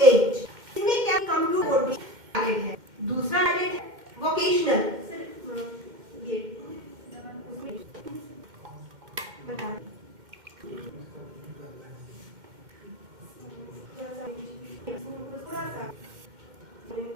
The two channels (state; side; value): late; left; 2.1 ms